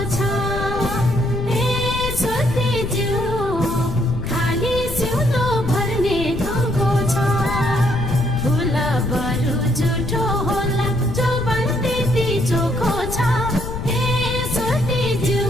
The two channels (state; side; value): noise; left; rumble, 6 dB below the sound